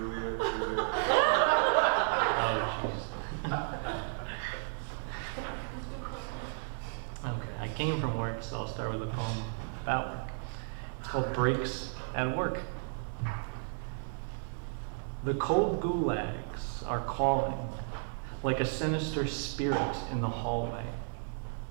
Oh, jeez. Okay, I came from work, so I'll start with a poem about work. It's called Breaks at Work. The cold gulags are calling like a sinister spirit in the hallway.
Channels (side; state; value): left; silent; digital silence